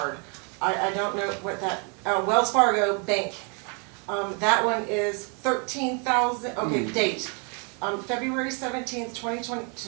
I don't know what that, Wells Fargo Bank. That one is 13,000, okay, date. February 17th, 2020,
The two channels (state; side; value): quieter; left; 36.5 dB